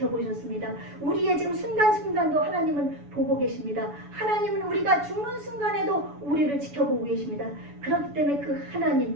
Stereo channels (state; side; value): late; left; 7.0 ms